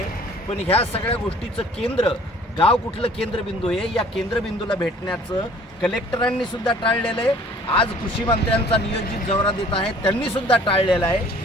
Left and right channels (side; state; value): both; normal; correlation 0.53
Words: पण ह्या सगळ्या गोष्टीचं केंद्र गाव कुठलं केंद्रबिंदू आहे या केंद्रबिंदूला भेटण्याचं कलेक्टरांनी सुद्धा टाळलेलं आहे। आज कृषी मंत्र्यांचा नियोजित दौरा देत आहे त्यांनी सुद्धा टाळलेलं आहे।